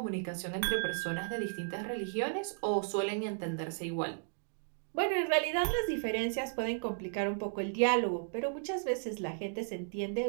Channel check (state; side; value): silent; left; digital silence